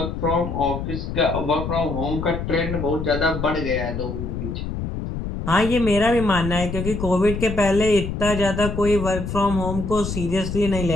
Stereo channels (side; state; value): left; noise; rumble, 5 dB below the sound